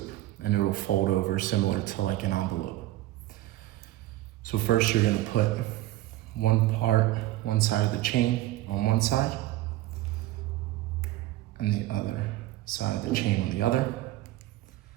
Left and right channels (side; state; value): left; quieter; 15.8 dB